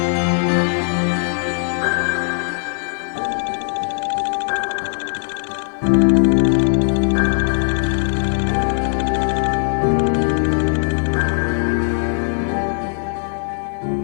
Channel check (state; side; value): silent; right; digital silence